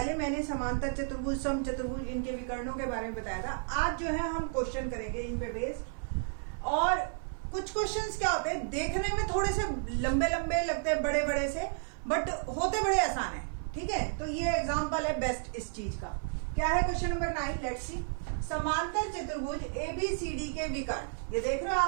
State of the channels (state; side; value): silent; left; 56 dB below the other